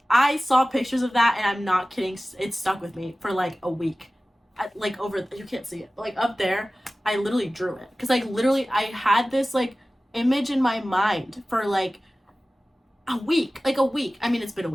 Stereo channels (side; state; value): both; normal; correlation 0.96